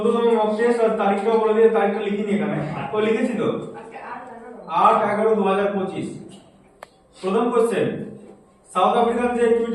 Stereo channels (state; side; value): identical; both; correlation 1.00